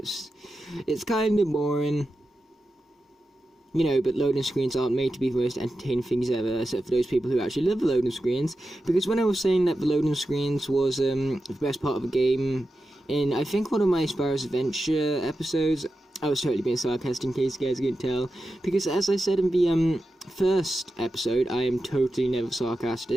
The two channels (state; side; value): normal; both; correlation 0.91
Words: it's kind of boring. You know, but loading screens aren't made to be the most entertaining things ever, except for those people who actually love the loading screens. Because when I was saying that the loading screens was the best part of the game, in I think one of my Spyro's Adventure episodes, I was totally being sarcastic in case you guys couldn't tell. Because as I said in the first episode, I am totally never